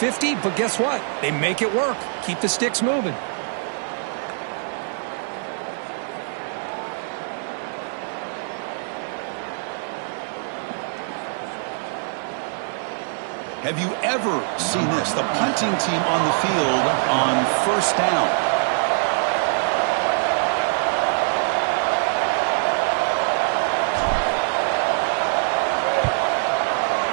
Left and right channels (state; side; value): silent; left; 63 dB below the other